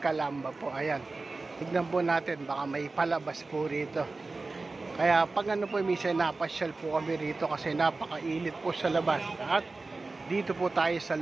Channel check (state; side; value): quieter; left; 3.6 dB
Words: po. Ayan. Tignan po natin, baka may palabas po rito. Kaya pag ano po, minsan napasyal po kami rito kasi napakainit po sa labas. At dito po tayo sa